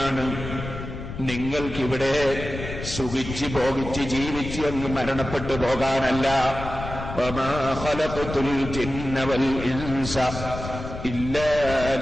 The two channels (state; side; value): noise; left; rumble, 8 dB below the sound